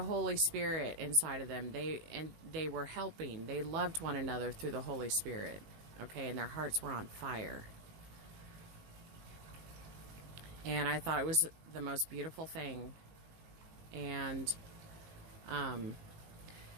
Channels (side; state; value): left; late; 19 ms